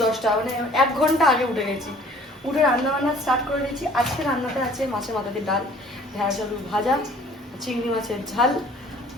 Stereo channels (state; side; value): normal; both; correlation 0.53